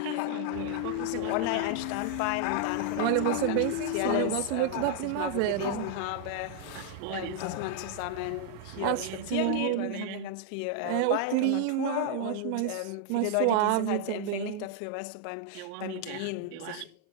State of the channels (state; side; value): different; both; correlation 0.00